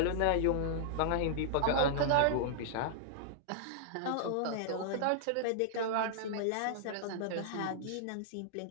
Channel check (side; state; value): both; different; correlation -0.01